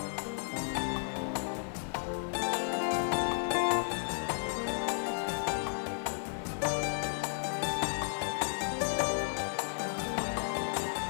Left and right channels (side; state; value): right; silent; digital silence